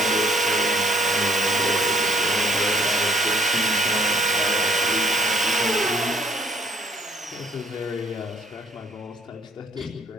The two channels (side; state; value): both; normal; correlation 0.64